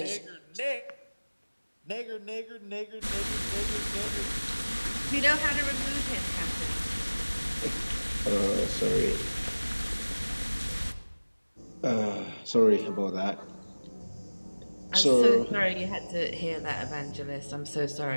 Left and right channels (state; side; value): inverted; both; correlation -1.00